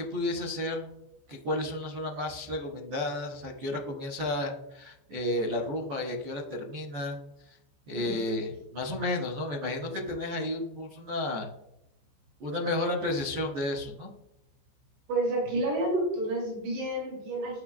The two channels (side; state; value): left; late; 14 ms